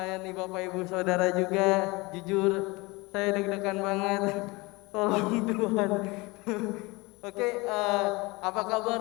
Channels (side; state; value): right; quieter; 24.1 dB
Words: Bapak Ibu Saudara juga. Jujur, saya deg-degan banget. Tolong Tuhan. Oke, apa